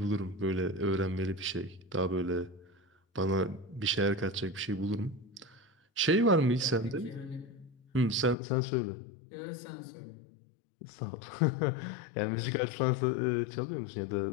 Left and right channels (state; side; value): drops out; right; at 8.3 s